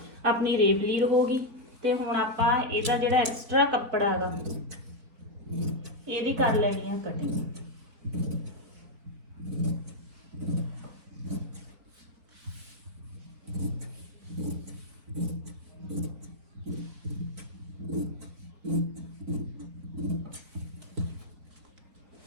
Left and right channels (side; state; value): left; late; 4.0 ms